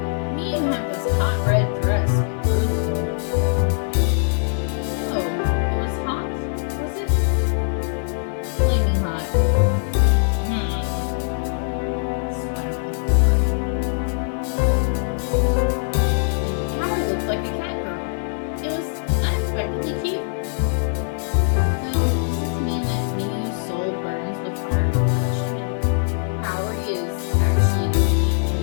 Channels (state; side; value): silent; right; digital silence